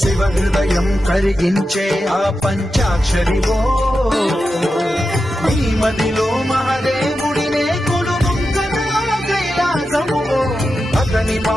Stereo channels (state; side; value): normal; both; correlation 0.90